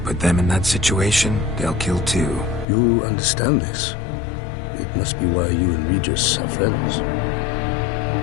Put them in that situation, they'll kill too. You understand this. It must be why you and Regis are friends.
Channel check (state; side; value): drops out; right; at 2.7 s